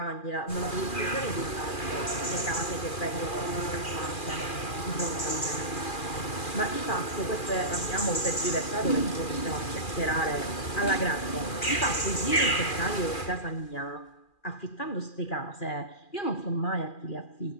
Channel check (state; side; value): late; right; 2.4 ms